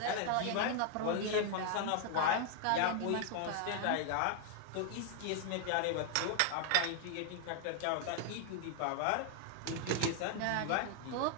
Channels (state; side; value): different; both; correlation 0.00